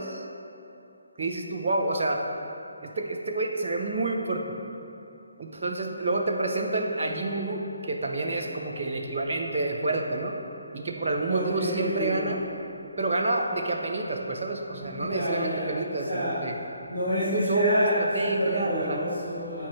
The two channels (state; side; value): inverted; both; correlation -0.66